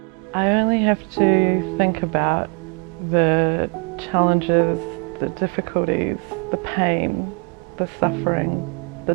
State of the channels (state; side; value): quieter; left; 34.9 dB